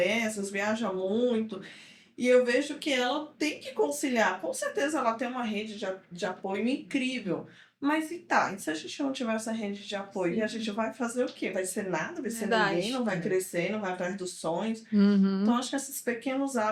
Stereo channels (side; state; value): both; identical; correlation 1.00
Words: viaja muito. E eu vejo que ela tem que conciliar. Com certeza ela tem uma rede de apoio incrível. Mas e se a gente não tiver essa rede de apoio, Sim. a gente vai fazer o quê? Vai ser nada, vai ser Verdade. ninguém, não vai crescer, não vai atrás dos sonhos. Uhum. Então, acho que esses pequenos